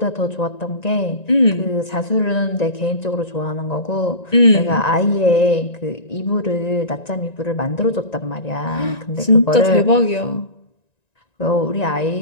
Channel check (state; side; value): late; right; 1.9 ms